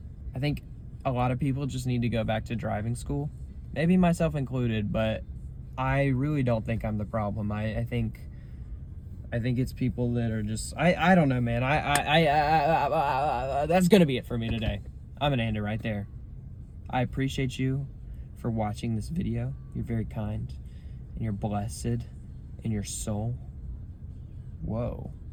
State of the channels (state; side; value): identical; both; correlation 1.00